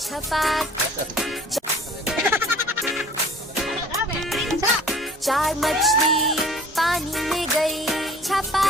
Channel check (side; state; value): both; normal; correlation 0.50